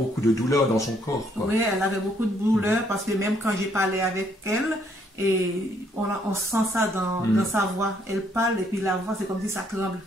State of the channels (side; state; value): both; normal; correlation 0.68